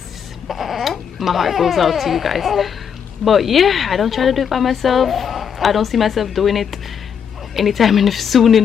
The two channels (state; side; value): quieter; right; 7.5 dB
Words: My heart goes out to you guys. But yeah, I don't try to do it by myself. I don't see myself doing it anytime soon